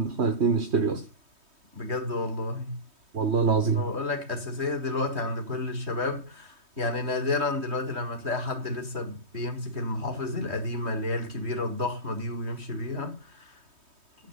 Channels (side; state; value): left; late; 3.2 ms